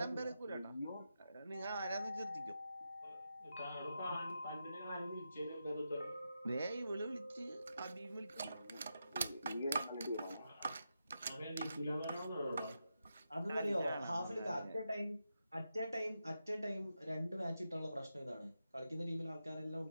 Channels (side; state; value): both; inverted; correlation -0.87